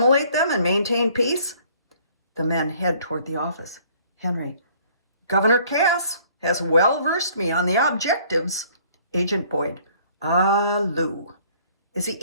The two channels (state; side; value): inverted; both; correlation -0.58